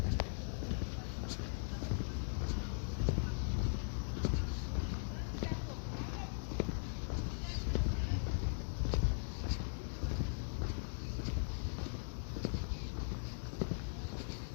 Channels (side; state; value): right; silent; digital silence